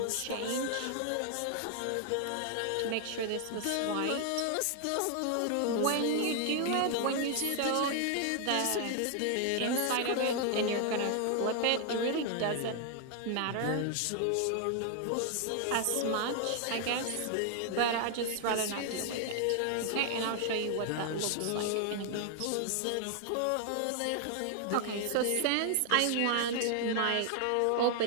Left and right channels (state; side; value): different; both; correlation 0.00